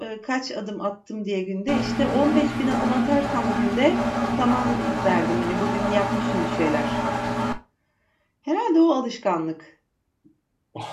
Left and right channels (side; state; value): both; identical; correlation 1.00